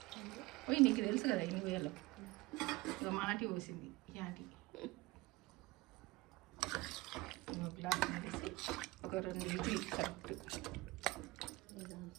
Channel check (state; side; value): quieter; left; 21.4 dB